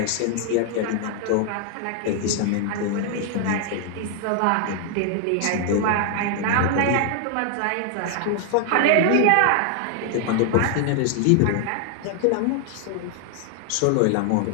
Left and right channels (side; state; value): both; different; correlation 0.00